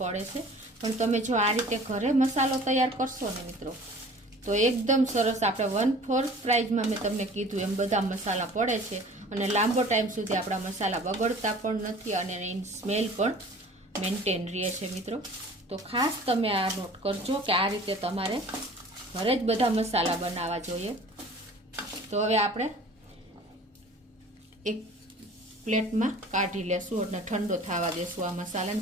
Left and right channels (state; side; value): normal; both; correlation 0.46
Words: છે, પણ તમે જો આ રીતે ઘરે મસાલો તૈયાર કરશો ને મિત્રો, તો એકદમ સરસ આપણે 1/4 પ્રાઇઝમાં મેં તમને કીધું એમ બધા મસાલા પડે છે અને લાંબો ટાઈમ સુધી આપણા મસાલા બગડતા પણ નથી અને એની સ્મેલ પણ મેન્ટેન રહે છે મિત્રો. તો ખાસ તમે આ નોટ કરજો કે આ રીતે તમારે ઘરે જ બધા મસાલા બનાવવા જોઈએ. તો હવે આપણે એક પ્લેટમાં કાઢી લેશું અને ઠંડો થવા દેશું આ મસાલાને.